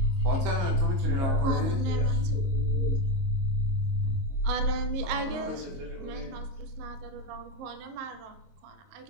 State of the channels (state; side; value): late; left; 22 ms